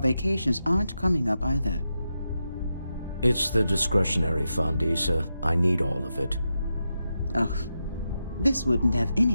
aren't coming up either. It's the discretionary fund, Issa. I need all of it. Ugh. This wouldn't have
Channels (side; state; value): both; inverted; correlation -0.88